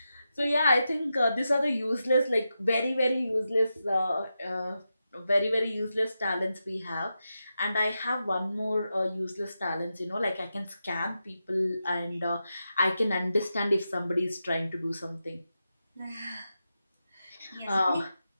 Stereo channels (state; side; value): inverted; both; correlation -0.89